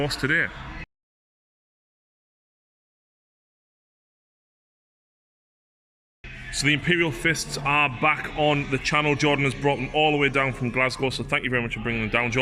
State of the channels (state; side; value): identical; both; correlation 1.00